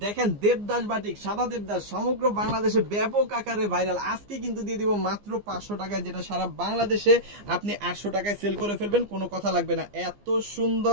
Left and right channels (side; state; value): left; late; 15 ms